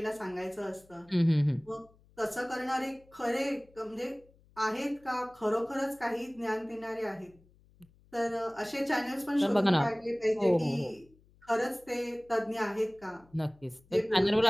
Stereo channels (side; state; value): left; noise; hum, 29 dB below the sound